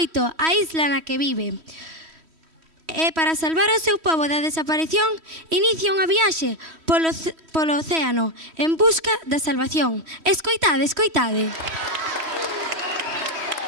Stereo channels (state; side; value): late; left; 3.1 ms